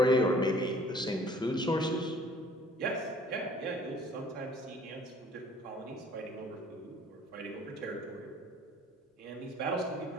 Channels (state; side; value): normal; both; correlation 0.54